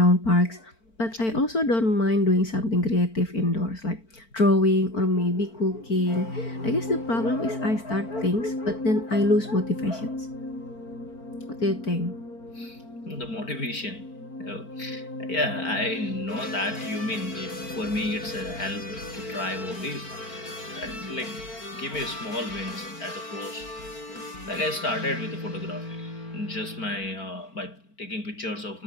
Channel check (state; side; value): late; right; 4.5 ms